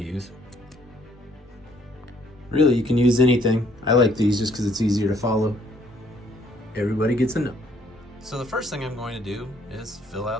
Really, you can use anything. I like these just because it's easier to follow. Everybody gets a note. So the first thing I'm going to do is fill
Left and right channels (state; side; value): normal; both; correlation 0.65